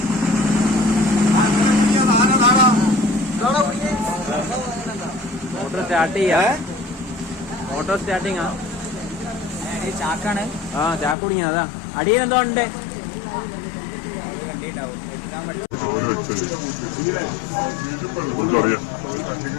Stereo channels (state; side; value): drops out; right; at 11.2 s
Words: Motor start ചെയ്യാ. മോട്ടോർ സ്റ്റാർട്ടിങ്ങാ. ചാക്കാണ്. ആ ചാക്ക് കുടുങ്ങിയ. അതാ അടിയിലെന്തോ ഉണ്ട്. കണ്ടിട്ടുണ്ടാവും.